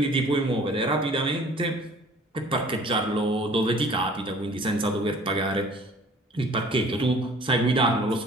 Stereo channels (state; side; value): normal; both; correlation 0.51